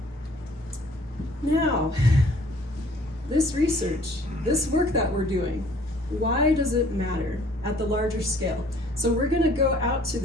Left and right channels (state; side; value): normal; both; correlation 0.56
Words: Now, this research, this work that we're doing, why does it matter at the larger scale? So we're gonna go out to